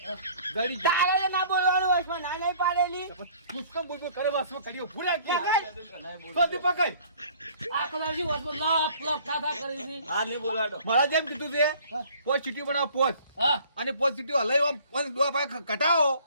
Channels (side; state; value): both; inverted; correlation -0.53